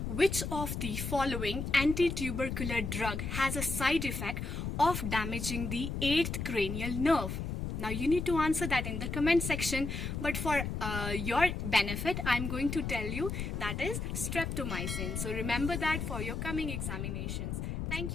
which of the following anti-tubercular drug has a side effect of damaging the 8th cranial nerve? Now you need to answer that in the comment section, but for your benefit I'm going to tell you that is streptomycin. So remember that for your coming examinations.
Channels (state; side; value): noise; left; rumble, 3 dB below the sound